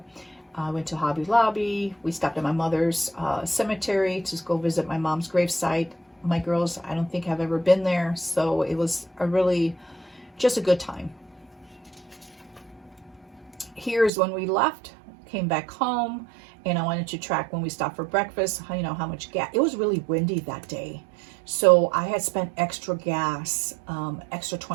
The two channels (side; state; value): left; drops out; at 14.1 s